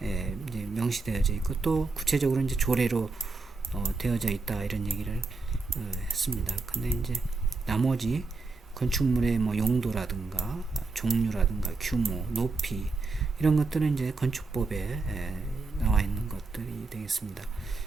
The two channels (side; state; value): left; quieter; 3.8 dB